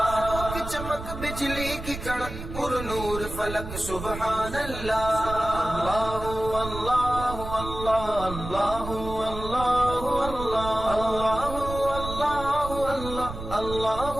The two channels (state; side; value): noise; right; rumble, 9 dB below the sound